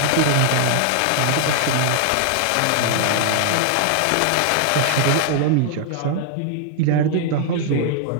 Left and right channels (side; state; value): both; different; correlation 0.00